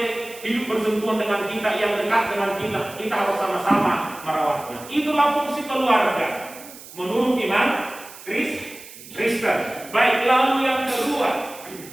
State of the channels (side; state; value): right; noise; hiss, 17 dB below the sound